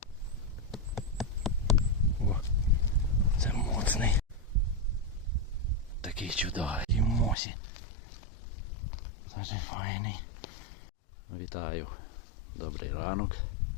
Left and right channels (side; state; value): right; drops out; at 7.4 s